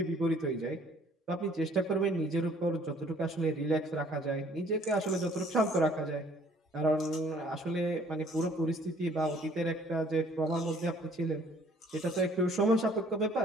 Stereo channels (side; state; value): both; normal; correlation 0.58